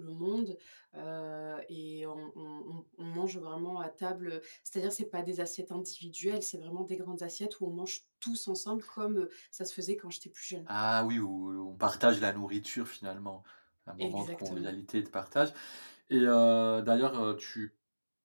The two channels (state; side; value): inverted; both; correlation -1.00